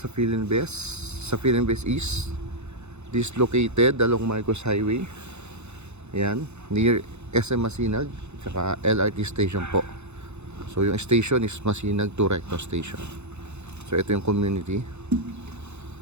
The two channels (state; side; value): late; left; 0.81 ms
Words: Philinbest East, this located along Marcos Highway. Ayan, near SM Masinag tsaka LRT station po. So yung station is Masinag to Recto station. So ito yung community.